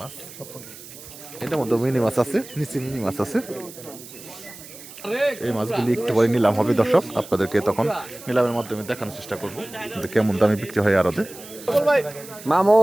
মাছ। এটার মধ্যে মিনি মাছ আছে, নিচে মিনি মাছ আছে। এই মাছগুলি একটু পরে নিলাম হবে দর্শক, আপনাদেরকে তখন নিলামের মাধ্যমে দেখানোর চেষ্টা করবো কেমন দামে বিক্রি হয় আরতে।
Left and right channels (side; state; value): right; noise; hiss, 16 dB below the sound